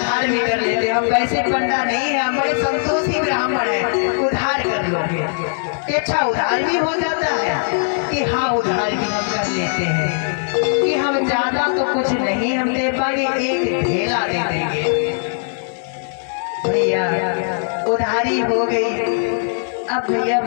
भी कर लेते हैं, हम पैसे पंडा नहीं है, हम बड़े संतोषी ब्राह्मण हैं, उधार कर लोगे। कि अच्छा उधार भी हो जाता है। कि हाँ, उधार भी हम कर लेते हैं। कि हम ज्यादा तो कुछ नहीं हम दे पाएंगे, एक ढेला दे देंगे। भैया उधारी हो गई। अब भैया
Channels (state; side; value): silent; right; 66 dB below the other